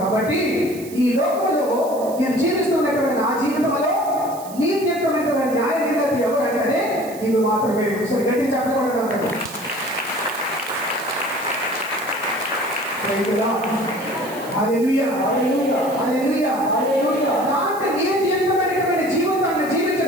కాబట్టి ఈ లోకంలో నేను జీవిస్తున్నటువంటి నా జీవితంలో నీతియుక్తమైనటువంటి న్యాయ నిర్ణయం ఎవరంటే నీవు మాత్రమే. ఒకసారి గట్టి చెప్పకూడదు. హల్లెలూయా హల్లెలూయా హల్లెలూయా హల్లెలూయా. అంటే నీతియుక్తమైనటువంటి జీవితాన్ని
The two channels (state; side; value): noise; right; hiss, 17 dB below the sound